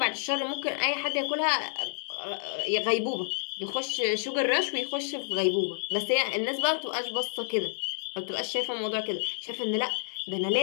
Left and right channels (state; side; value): silent; right; digital silence